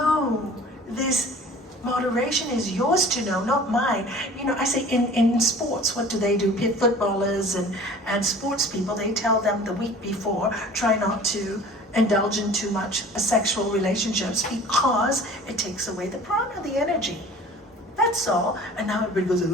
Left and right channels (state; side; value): normal; both; correlation 0.45